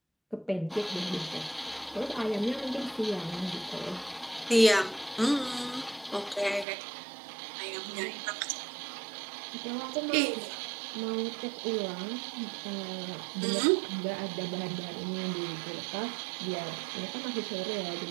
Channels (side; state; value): left; drops out; at 6.7 s